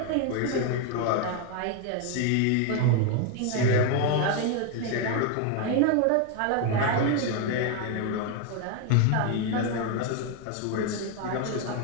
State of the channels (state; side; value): different; both; correlation 0.01